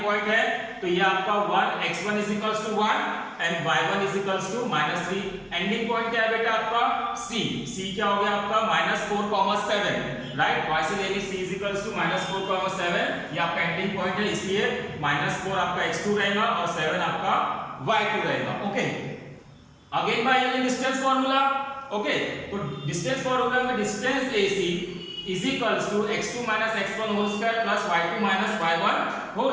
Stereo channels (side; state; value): both; identical; correlation 1.00